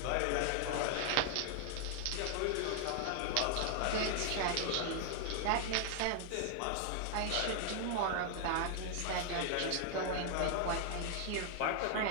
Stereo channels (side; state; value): both; different; correlation 0.00